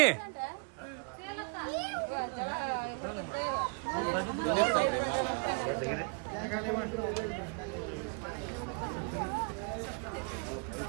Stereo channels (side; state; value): left; quieter; 36.3 dB